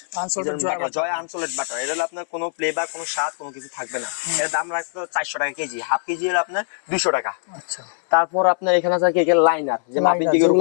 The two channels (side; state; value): right; silent; 61 dB below the other